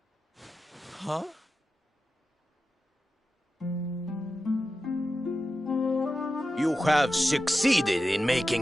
Huh? You have succeeded in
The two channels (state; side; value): normal; both; correlation 0.92